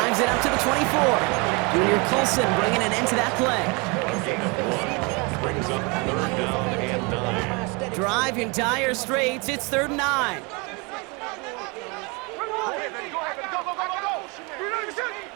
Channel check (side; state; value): left; quieter; 29.6 dB